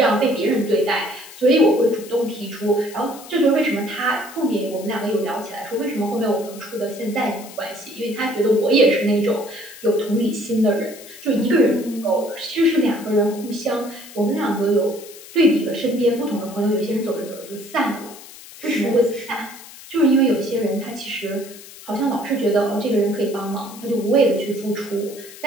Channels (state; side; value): noise; left; hiss, 17 dB below the sound